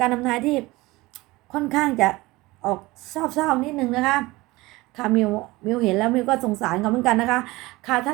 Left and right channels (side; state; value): left; quieter; 20.8 dB